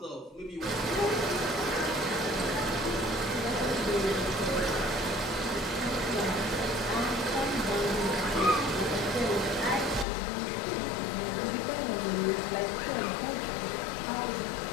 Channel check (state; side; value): drops out; right; at 10.1 s